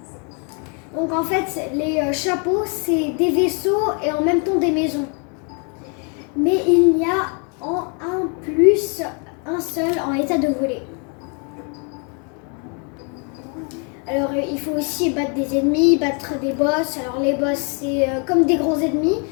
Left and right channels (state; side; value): quieter; right; 37.3 dB